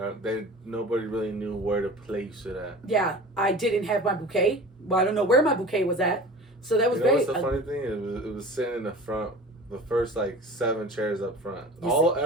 Nobody really knew where to place it at. Yeah, I didn't have my bouquet. Well, I don't know where my bouquet was at. So that was What's the funny thing? It was sitting in the front, the first 7 chairs up front.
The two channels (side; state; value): both; normal; correlation 0.38